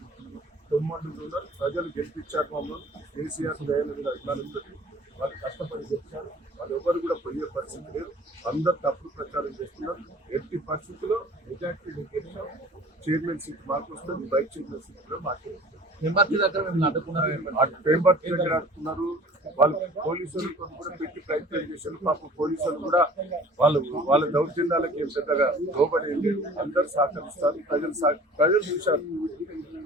తొమ్మండులు ఉన్నారు. ప్రజలు గెలిపించారు. మమ్మల్ని కేసీఆర్ లేయన్ మీద అభిమానంతో వాళ్ళు కష్టపడి గెలిచారు. వాళ్ళు ఎవరు కూడా పోయే పరిస్థితి లేదు. అందరు తప్పుడు ప్రచారం చేస్తున్నారు. ఎట్టి పరిస్థితుల్లో మెజార్టీ గెలిచాం. చైర్మన్ సీట్ మాకు వస్తుంది. వైస్ చైర్మన్ సీట్ కూడా మాకే వస్తుంది. పేంబర్తి దగ్గర అడుగుతున్నారు. వాళ్ళు పోలీసులు కూడా పెట్టి ప్రయత్నం చేశారు. పాపం పోలీసులు కూడా వాళ్ళ దౌర్జన్యాలకి ఏం పెద్దగా లోబడి లేదు. అందరూ సహకరిస్తారు. ప్రజలు చూశారు.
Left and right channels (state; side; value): normal; both; correlation 0.47